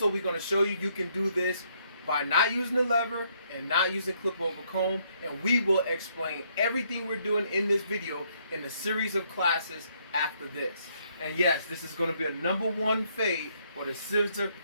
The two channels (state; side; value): inverted; both; correlation -0.70